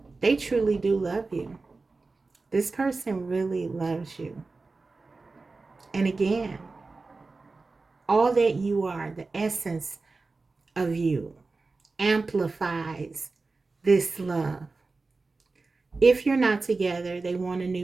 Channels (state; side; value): quieter; left; 3.8 dB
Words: They truly do love you. This person really loves you. And again, all that you are, the essence of you, amplifies this love. If you're not together, they want a new